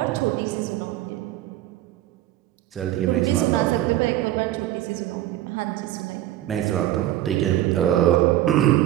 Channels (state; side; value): quieter; left; 14.0 dB